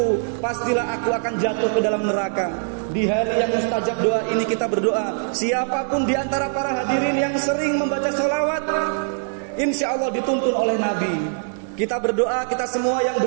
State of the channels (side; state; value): left; silent; digital silence